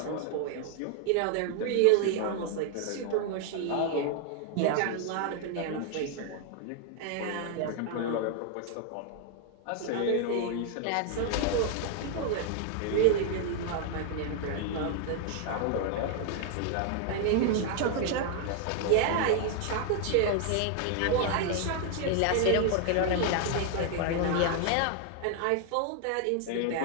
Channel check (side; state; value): both; different; correlation 0.00